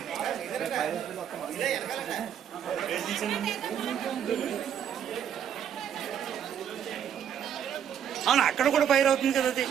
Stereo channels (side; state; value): left; quieter; 9.0 dB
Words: అవును అక్కడ కూడా ఫైర్ అవుతుంది కదా అది